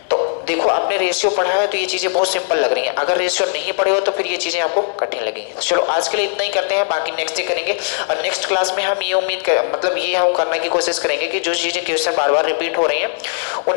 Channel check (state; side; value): silent; right; digital silence